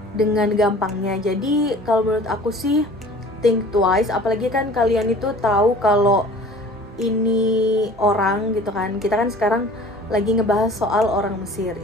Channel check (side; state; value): both; normal; correlation 0.46